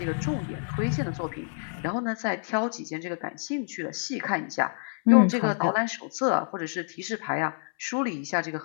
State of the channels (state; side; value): silent; right; 59 dB below the other